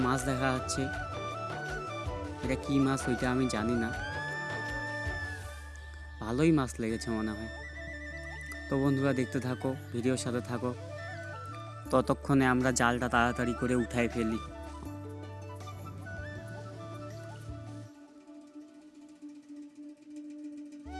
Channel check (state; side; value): identical; both; correlation 1.00